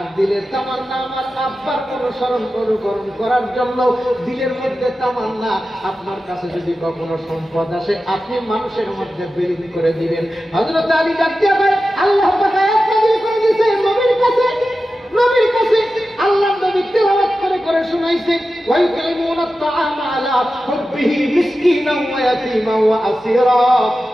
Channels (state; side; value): normal; both; correlation 0.93